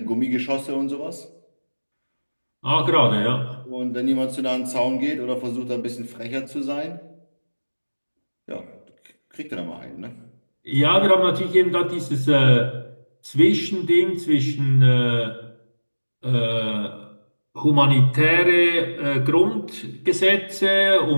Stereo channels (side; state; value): both; inverted; correlation -1.00